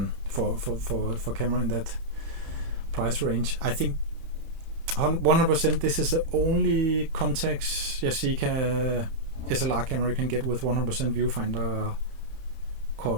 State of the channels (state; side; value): late; left; 31 ms